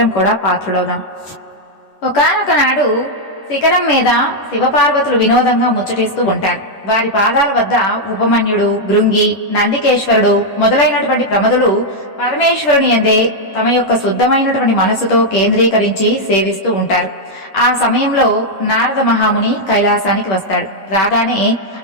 కూడా పాత్రులవుదాం. ఒకానొక నాడు శిఖరం మీద శివపార్వతులు వినోదంగా ముచ్చటిస్తూ ఉంటారు. వారి పాదాల వద్ద ఉపమన్యుడు, భృంగి, నందికేశ్వరుడు మొదలైనటువంటి ప్రమదులు పరమేశ్వరుని యందే తమ యొక్క శుద్ధమైనటువంటి మనసుతో కేంద్రీకరించి సేవిస్తూ ఉంటారు. ఆ సమయంలో నారద మహాముని కైలాసానికి వస్తాడు. రాగానే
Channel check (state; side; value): late; right; 10 ms